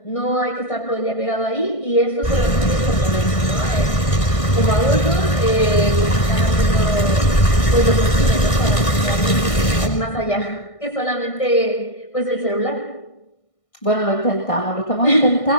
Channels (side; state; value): right; late; 1.6 ms